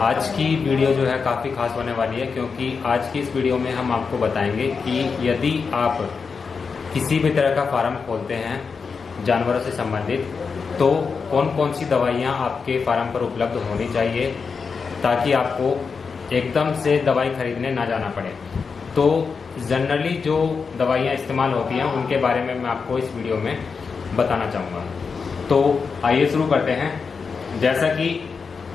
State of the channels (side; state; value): right; quieter; 5.3 dB